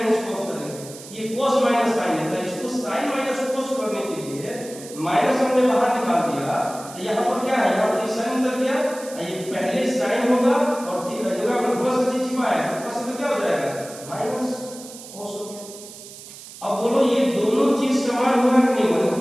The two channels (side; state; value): right; noise; hiss, 16 dB below the sound